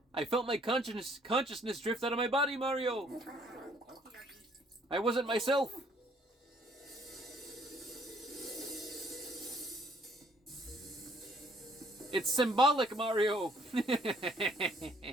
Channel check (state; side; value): normal; both; correlation 0.63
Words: I felt my consciousness drift out of my body, Mario! I wasn't myself! It's symbolic, Mario!